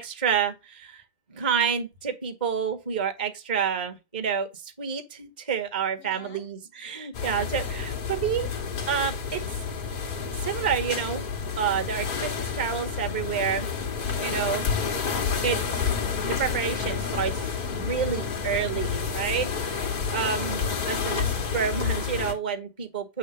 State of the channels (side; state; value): right; late; 2.0 ms